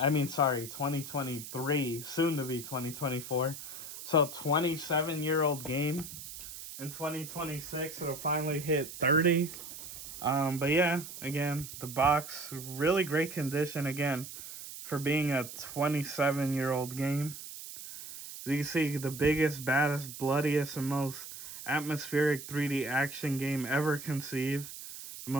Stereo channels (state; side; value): noise; right; hiss, 11 dB below the sound